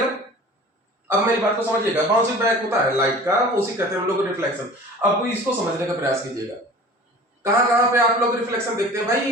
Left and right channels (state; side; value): normal; both; correlation 0.42